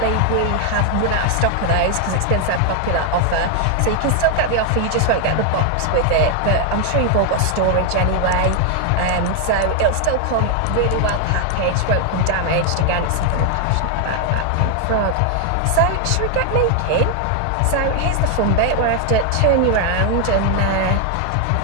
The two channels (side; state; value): both; different; correlation 0.00